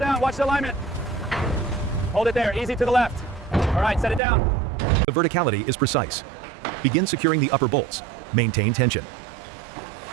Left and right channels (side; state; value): left; drops out; at 4.2 s